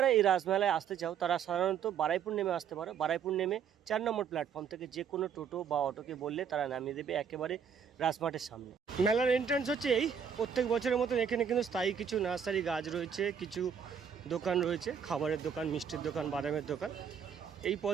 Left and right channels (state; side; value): quieter; left; 7.4 dB